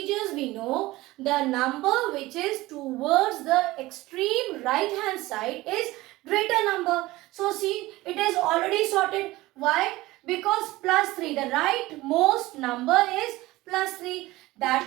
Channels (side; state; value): left; quieter; 18.8 dB